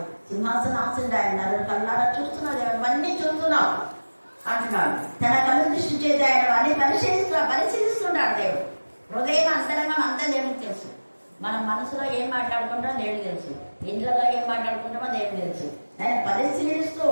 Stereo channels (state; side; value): inverted; both; correlation -1.00